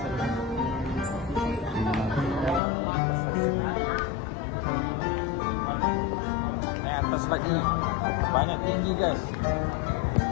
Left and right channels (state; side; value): drops out; right; at 2.6 s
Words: Naik atas lagi, banyak tinggi guys.